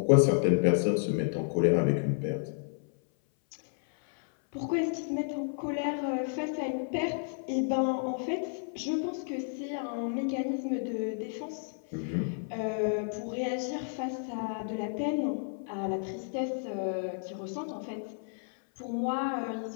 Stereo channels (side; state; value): right; silent; 57 dB below the other